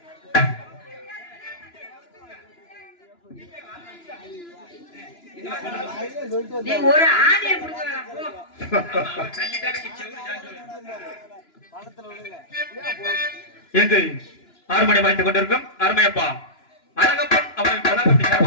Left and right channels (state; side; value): late; right; 2.9 ms